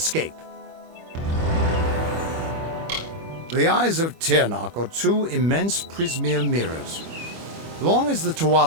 The eyes of Tirnak are two immense prismere mirrors. Long as the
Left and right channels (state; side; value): late; left; 25 ms